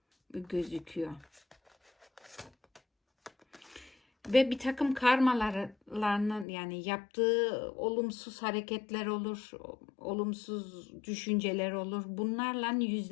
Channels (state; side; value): drops out; right; at 6.5 s